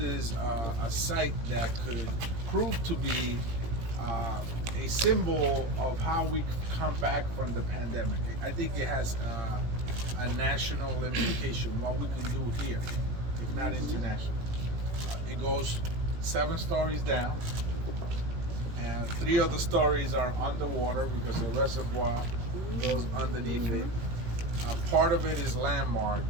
a site that could prove to be a symbol of how we come back from the pandemic. I think it has a national implication, what we can do here, if not international. It goes 7 stories down, and 3 of the stories are underwater because the reservoir goes underneath it. Part of it is landmark.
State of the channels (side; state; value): left; late; 18 ms